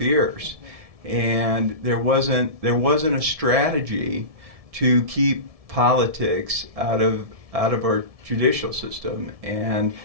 And there wasn't a strategy to keep politics out of our judicial system. And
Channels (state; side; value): late; left; 1.7 ms